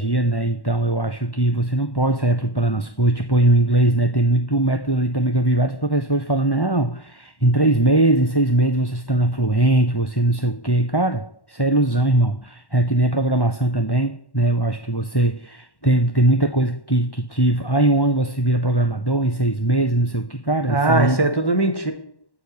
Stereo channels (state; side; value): late; right; 1.1 ms